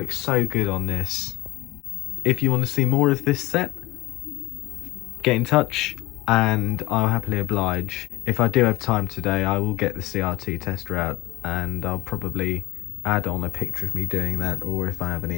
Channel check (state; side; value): quieter; right; 19.7 dB